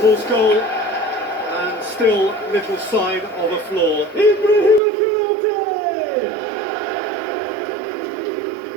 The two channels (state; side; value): drops out; left; at 4.8 s